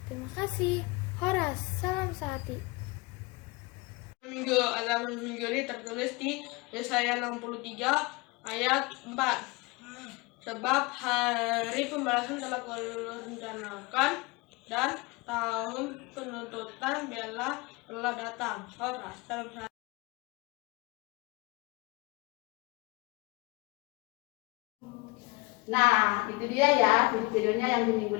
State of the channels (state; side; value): quieter; right; 25.2 dB